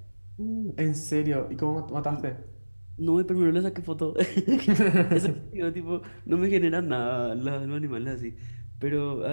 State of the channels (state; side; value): inverted; both; correlation -1.00